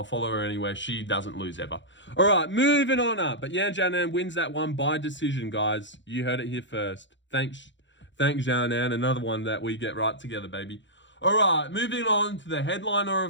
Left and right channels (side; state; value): right; late; 0.54 ms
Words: anywhere. She doesn't lose ever. All right, moving on up. But Yan Xiaonan wins that one by decision, guys. You heard it here first. Thanks Xiaonan. Another one that we get right together, baby. All right, moving on to the headliner